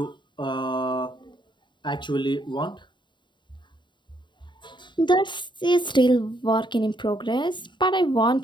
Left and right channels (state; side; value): late; right; 0.23 ms